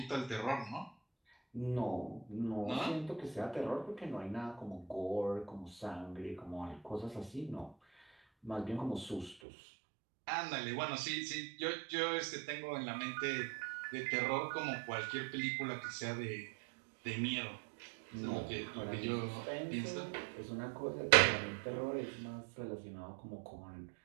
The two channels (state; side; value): drops out; left; at 9.3 s